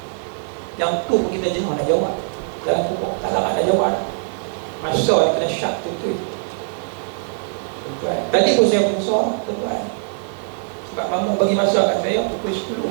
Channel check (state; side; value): silent; left; digital silence